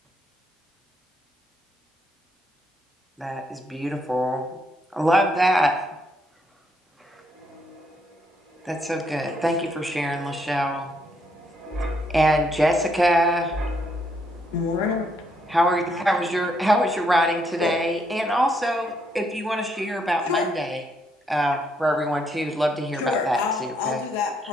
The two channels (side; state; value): both; normal; correlation 0.74